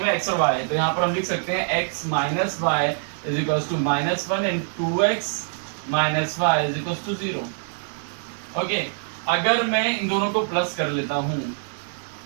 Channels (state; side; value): silent; left; digital silence